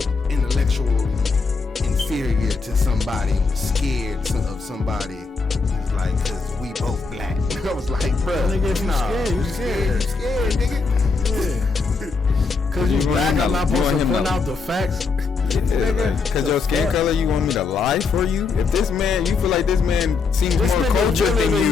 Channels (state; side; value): quieter; right; 4.5 dB